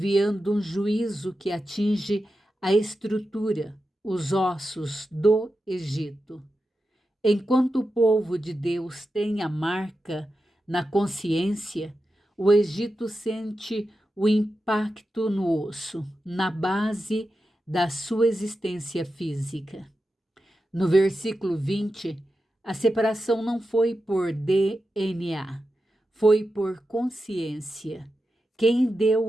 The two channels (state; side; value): normal; both; correlation 0.90